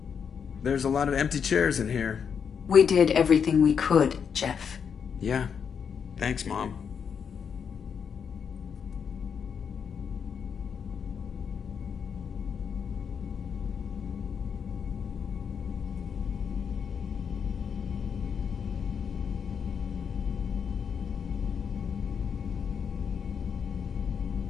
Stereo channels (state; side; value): quieter; right; 6.9 dB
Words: There's a lot of empty chairs in here. We did everything we could, Jeff. Yeah. Thanks, Mom.